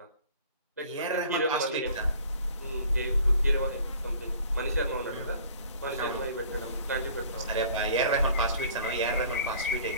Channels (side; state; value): both; inverted; correlation -0.50